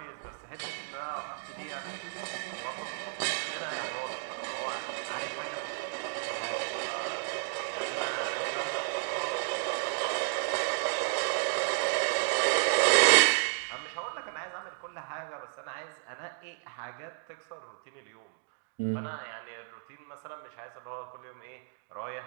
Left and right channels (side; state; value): left; silent; digital silence